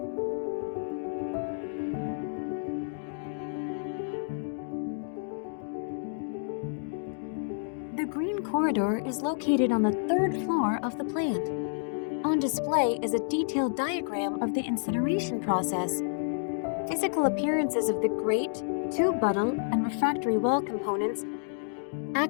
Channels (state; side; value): silent; right; digital silence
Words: The green corridor is located on the third floor of the plant. On display is a detailed diagram of the incineration process. Physical appearances of the grate, tube buttle, and refractory wall components,